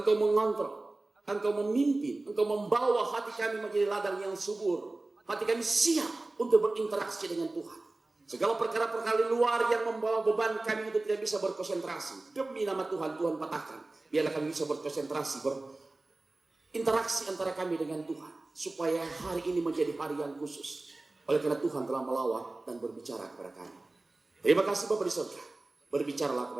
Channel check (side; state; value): left; quieter; 3.0 dB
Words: mengontrol, Engkau memimpin, Engkau membawa hati kami menjadi ladang yang subur. Hati kami siap untuk berinteraksi dengan Tuhan. Segala perkara-perkara luar yang membawa beban kami untuk tidak bisa berkonsentrasi. Demi nama Tuhan, Tuhan patahkan. Biarlah kami bisa berkonsentrasi, berinteraksi antara kami dengan Tuhan. Supaya hari ini menjadi hari yang khusus. Oleh karena Tuhan telah melawat dan berbicara kepada kami. Terima kasih Bapa di surga. Berbicaralah